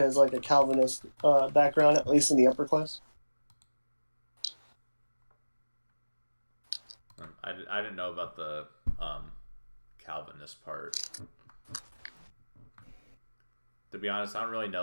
has like a Calvinist background, at least in the upper class. I didn't know about the Calvinist part. To be honest, I don't really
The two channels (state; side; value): inverted; both; correlation -1.00